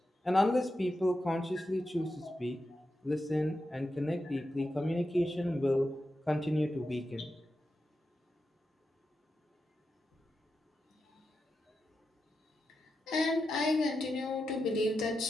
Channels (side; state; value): both; normal; correlation 0.89